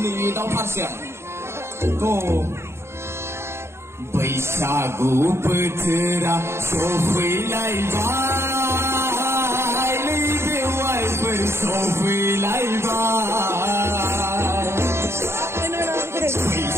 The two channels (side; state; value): left; late; 0.13 ms